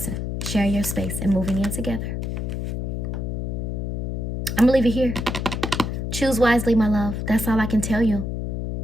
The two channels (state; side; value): noise; left; hum, 3 dB below the sound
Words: sharing your space, and moving in together. I'm going to leave it here. Choose wisely, my love. That's all I can tell you.